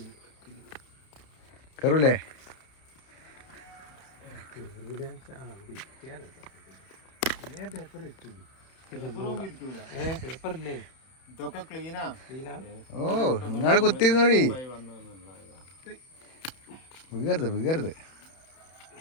കയറൂലേ? ഓ, നിങ്ങള് കുത്തിരുന്നോടി, വീകരുത് വീകരുത്.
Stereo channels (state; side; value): late; right; 31 ms